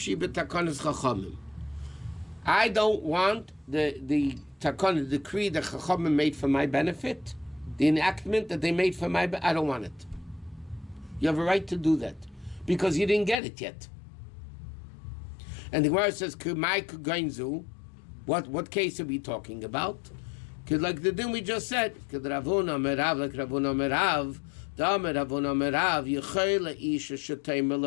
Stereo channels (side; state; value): right; drops out; at 13.4 s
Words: b'takanas chachamim. I don't want the takana, the decree that chachamim made for my benefit, the enactment that they made for my benefit, I don't want it. You have a right to do that, because you didn't get it yet. And the Gemara says, Kumai kugainzu. What case are we talking about? Because like the din we just said, like Ravuna Merav,